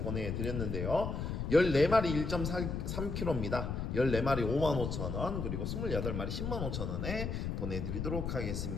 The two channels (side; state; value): left; noise; rumble, 3 dB below the sound